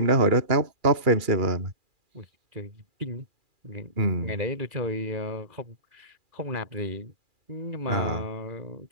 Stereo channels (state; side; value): late; left; 2.4 ms